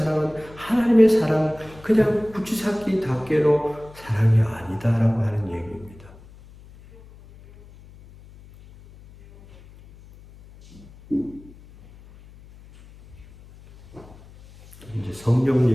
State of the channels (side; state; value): left; noise; hum, 22 dB below the sound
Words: 하나님의 사랑, 그냥 붙이삭기 닦개로 사랑이 아니다라고 하는 얘기입니다. 이제